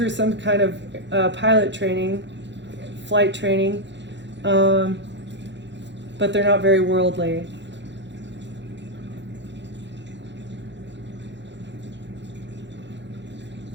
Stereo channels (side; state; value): left; late; 0.52 ms